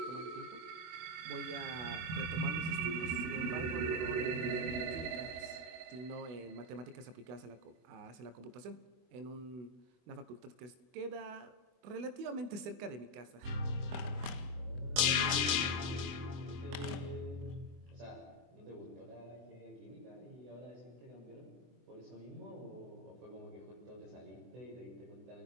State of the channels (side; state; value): left; late; 24 ms